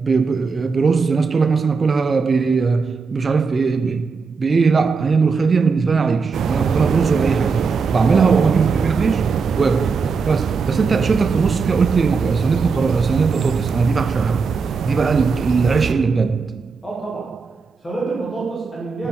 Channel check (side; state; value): left; quieter; 4.9 dB